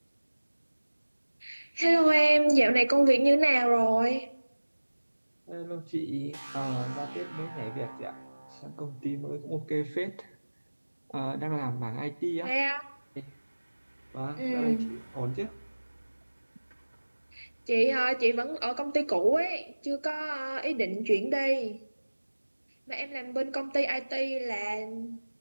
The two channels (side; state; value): both; inverted; correlation -1.00